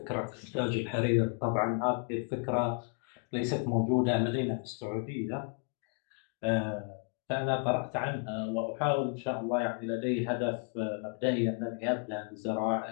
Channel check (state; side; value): quieter; right; 38.3 dB